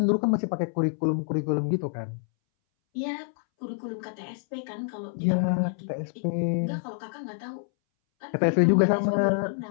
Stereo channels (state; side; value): silent; right; 60 dB below the other